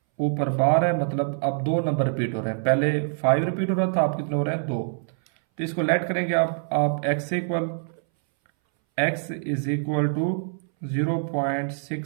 ऊपर बार है, मतलब अब दो नंबर रिपीट हो रहे हैं। पहले 5 रिपीट हो रहा था, आप कितने हो रहे हैं, 2। तो इसको लेट करेंगे आप x equal, x is equal to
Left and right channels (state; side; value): silent; left; 61 dB below the other